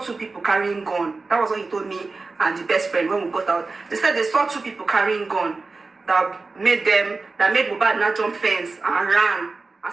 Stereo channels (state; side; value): quieter; left; 3.8 dB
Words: people carrying gun. That was what he told me and the best friend when we got out. They said they saw 2 people carrying gun that made Mohbad not jump fence and ran and